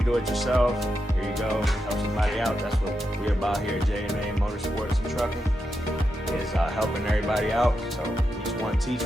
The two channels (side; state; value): both; normal; correlation 0.86